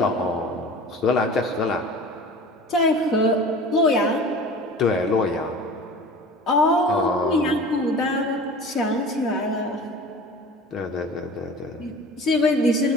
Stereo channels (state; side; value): normal; both; correlation 0.39